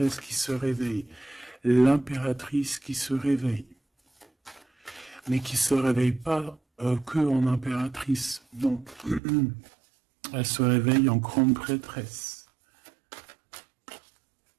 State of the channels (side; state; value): left; drops out; at 9.2 s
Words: qui se réveille. L'impératrice qui se réveille. Mais qui se réveille pas que en impératrice. Non. Elle se réveille en grande prêtresse.